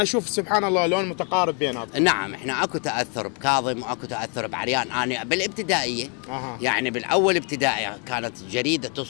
اشوف سبحان الله لون متقارب بيناتهم. نعم احنا اكو تاثر بكاظم واكو تاثر بعريان. انا بالابتدائيه يعني بالاول ابتدائي كانت جريده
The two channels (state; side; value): quieter; right; 37.8 dB